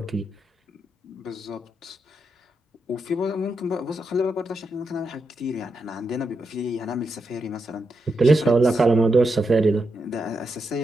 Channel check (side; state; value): both; normal; correlation 0.84